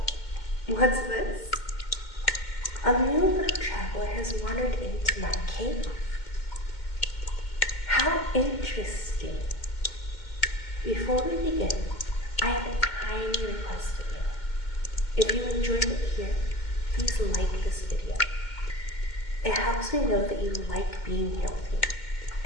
what's this? A new little traveler has wandered into my cave. How interesting. Before we begin, I have a tiny request of you. If you enjoyed it here, please like this video. It helps me know that you like being here with me,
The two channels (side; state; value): right; late; 2.1 ms